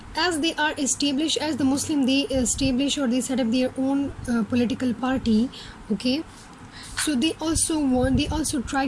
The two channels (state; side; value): identical; both; correlation 1.00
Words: as they are established, as the Muslim, they establish or they set up their own political party. Okay, so they also